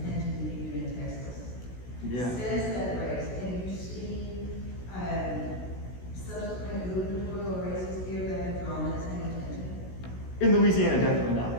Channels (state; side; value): late; right; 16 ms